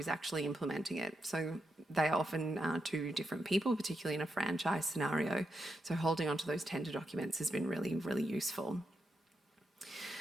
actually implementing it. So they are often two different people, particularly in a franchise scenario. So holding on to those tender documents has been really, really useful.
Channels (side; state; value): both; normal; correlation 0.84